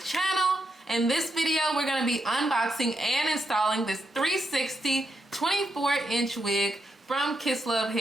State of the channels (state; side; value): normal; both; correlation 0.82